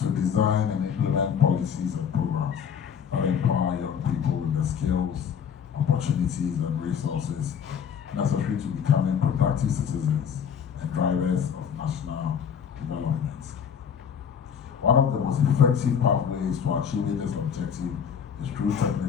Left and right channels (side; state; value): right; quieter; 7.6 dB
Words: design and implement policies and programs that empower young people with the skills, opportunities, and resources necessary to becoming productive citizens and drivers of national development. One of the most effective pathways to achieving this objective is through